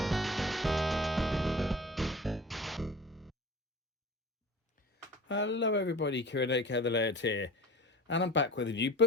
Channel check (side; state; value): both; normal; correlation 0.39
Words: Hello everybody, Kieran aka The Layout here, and I'm back with a new